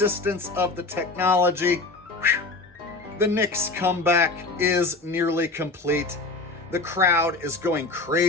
of the technology, the Knicks comeback is nearly complete. The crowd is going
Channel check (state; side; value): quieter; right; 3.4 dB